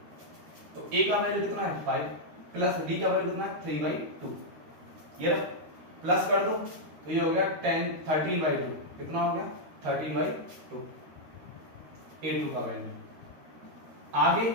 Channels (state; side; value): late; left; 13 ms